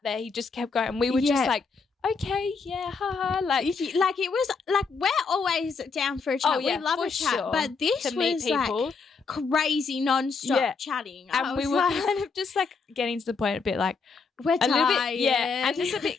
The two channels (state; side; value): quieter; right; 4.8 dB